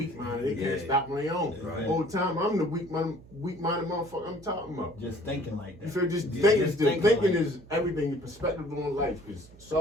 minded. They can't Yeah. stop on their own. Right. Whole time I'm the weak minded motherfucker I'm talking about. Just thinking like that. You feel just Yeah, thinking, just thinking thinking like is everything. Your perspective on life, because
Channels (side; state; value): right; noise; hum, 22 dB below the sound